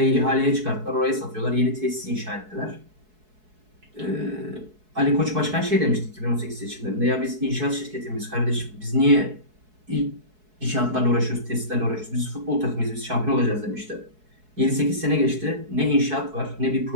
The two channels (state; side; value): late; left; 4.7 ms